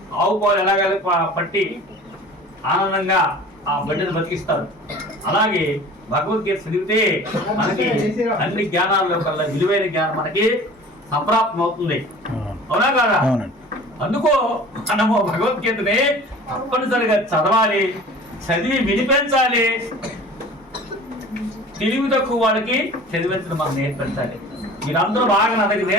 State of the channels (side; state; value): both; normal; correlation 0.42